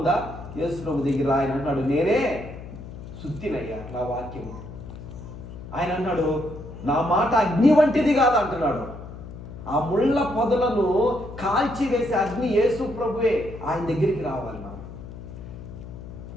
యేసు ప్రభు దగ్గర ఆయన అన్నాడు, నేనే సుత్తినయ్యా నా వాక్యము. ఆయన అన్నాడు, నా మాట అగ్ని వంటిది కాదు అంటున్నాడు. ఆ ముళ్ళ పొదలను కాల్చి వేసే అగ్ని యేసు ప్రభువే. ఆయన దగ్గరికి రావాలి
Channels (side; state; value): left; noise; hum, 12 dB below the sound